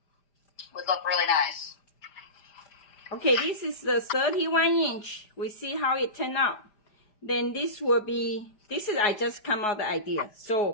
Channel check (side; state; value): right; late; 5.0 ms